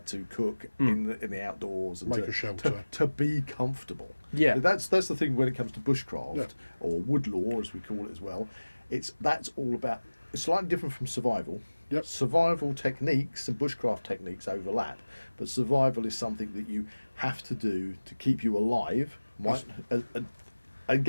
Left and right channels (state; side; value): inverted; both; correlation -1.00